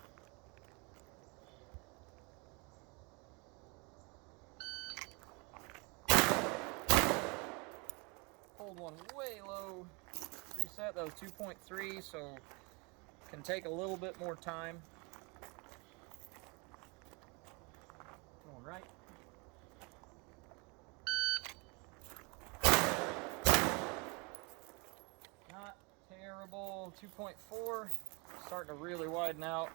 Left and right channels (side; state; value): left; quieter; 29.2 dB